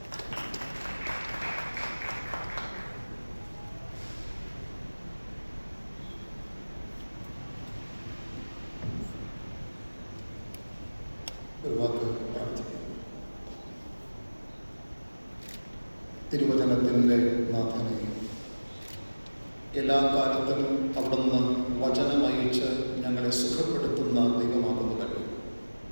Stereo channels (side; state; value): both; inverted; correlation -1.00